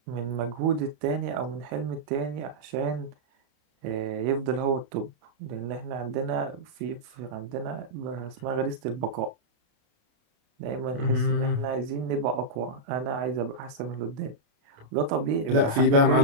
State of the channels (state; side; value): late; left; 28 ms